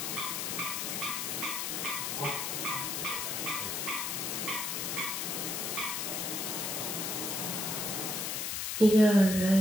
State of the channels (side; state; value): left; noise; hiss, 2 dB below the sound